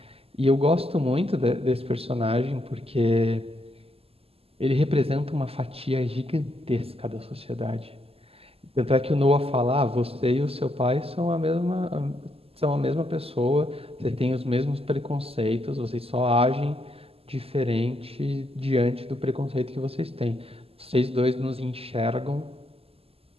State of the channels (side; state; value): left; late; 0.28 ms